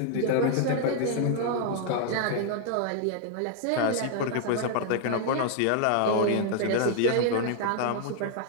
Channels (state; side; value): different; both; correlation 0.00